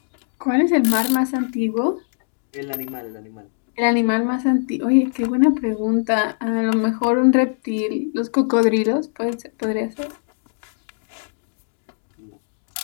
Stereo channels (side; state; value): right; silent; digital silence